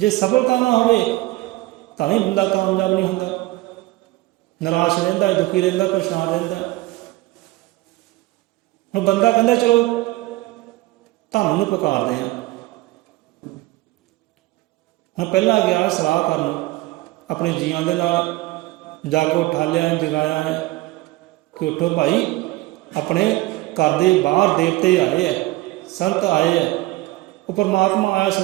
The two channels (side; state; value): left; quieter; 19.1 dB